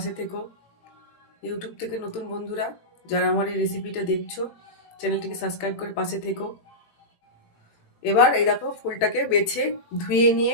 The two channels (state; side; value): late; right; 18 ms